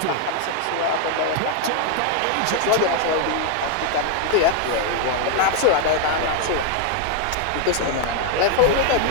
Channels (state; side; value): different; both; correlation 0.00